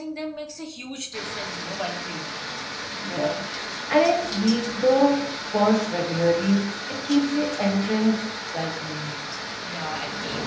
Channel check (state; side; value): identical; both; correlation 1.00